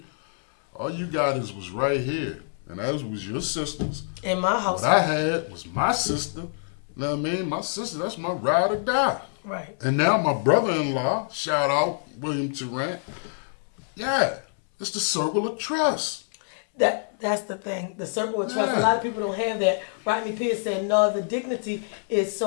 All you got was right here. And that was your sisters. In my house. What I had was my sister. You know what I mean? My sister, that's my ride or die. Right. And now my brother-in-law, shout out William Tarrant, yeah, it's the circle of trust. That's the thing. The circle of trust. Yeah. A lot of people don't have that. Rodney Pierce said, "No, the dignity is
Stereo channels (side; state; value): right; silent; 61 dB below the other